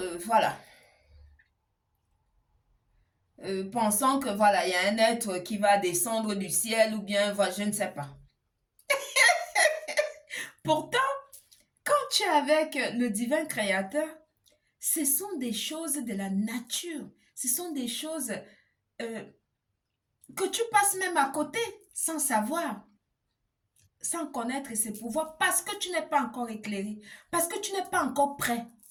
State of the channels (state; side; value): identical; both; correlation 1.00